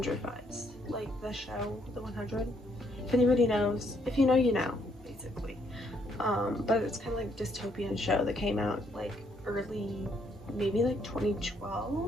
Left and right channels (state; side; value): normal; both; correlation 0.71